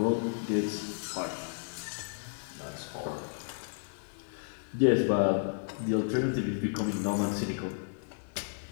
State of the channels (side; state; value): right; silent; digital silence